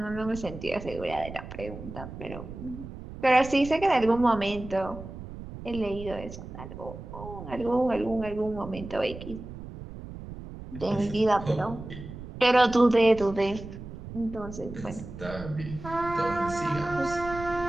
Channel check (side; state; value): right; noise; rumble, 12 dB below the sound